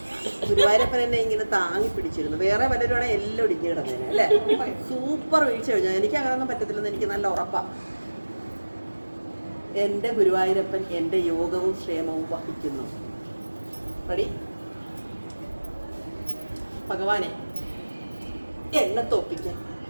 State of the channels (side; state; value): both; inverted; correlation -1.00